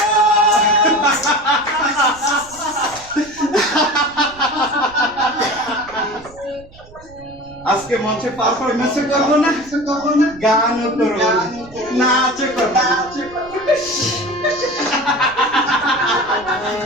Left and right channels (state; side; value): noise; right; rumble, 22 dB below the sound